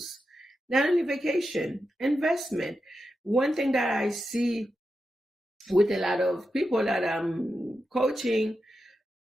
Not only vacation, investment. One thing that I see with a lot of people that I'm coaching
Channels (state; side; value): normal; both; correlation 0.89